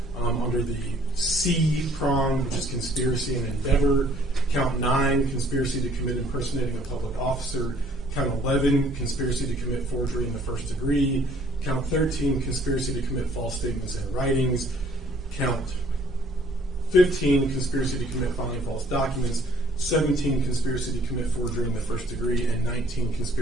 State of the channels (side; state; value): both; normal; correlation 0.59